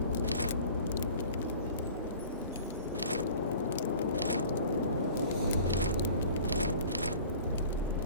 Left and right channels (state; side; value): inverted; both; correlation -0.45